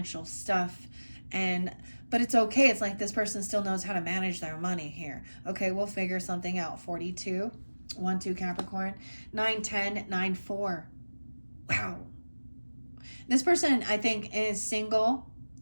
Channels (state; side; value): inverted; both; correlation -1.00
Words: stuff, but it's okay. It's like this person still knows how to manage their money here. Okay, we'll figure something out. 42, 1-2 Capricorn, 9-10, 9-4. Wow. This person, I think, is single.